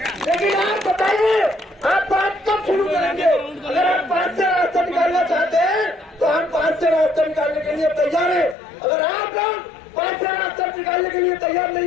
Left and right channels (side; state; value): right; drops out; at 8.6 s